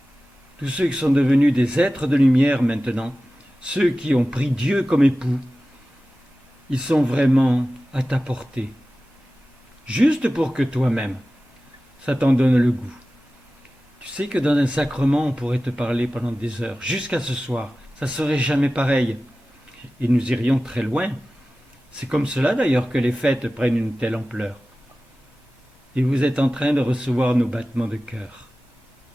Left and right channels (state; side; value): normal; both; correlation 0.96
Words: ceux qui sont devenus des êtres de lumière maintenant, ceux qui ont pris Dieu comme époux, ils sont vraiment à ta portée, juste pour que toi-même, ça t'en donne le goût. Tu sais que dans un sacrement, on pourrait te parler pendant des heures, jusqu'à ce soir, ça serait jamais pareil. Et nous irions très loin. C'est comme cela d'ailleurs que les fêtes prennent une telle ampleur. Et vous êtes en train de recevoir nos battements de cœur.